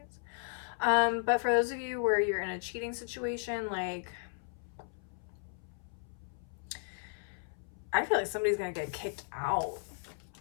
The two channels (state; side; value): silent; right; 54 dB below the other